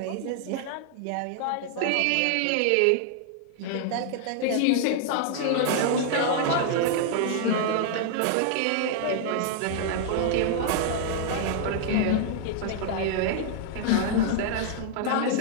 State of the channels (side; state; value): both; different; correlation 0.00